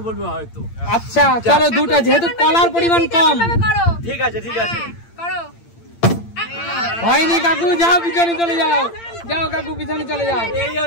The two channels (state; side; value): late; right; 8.8 ms